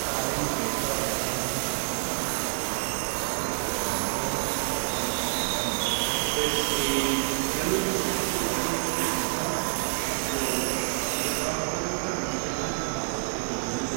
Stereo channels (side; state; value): left; quieter; 37.3 dB